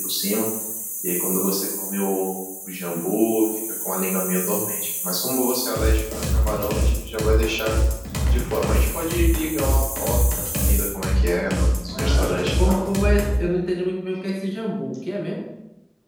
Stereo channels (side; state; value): both; identical; correlation 1.00